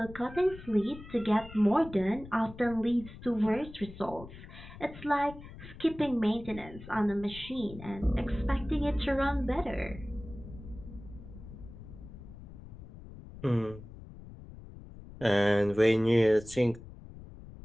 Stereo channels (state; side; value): noise; left; rumble, 15 dB below the sound